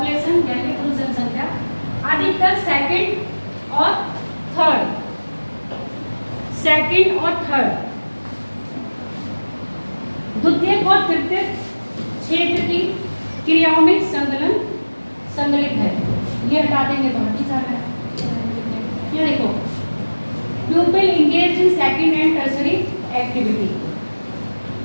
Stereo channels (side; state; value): both; inverted; correlation -1.00